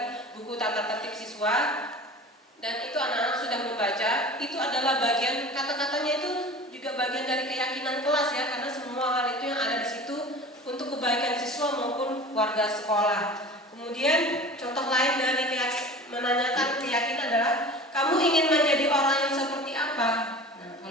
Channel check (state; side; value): normal; both; correlation 0.38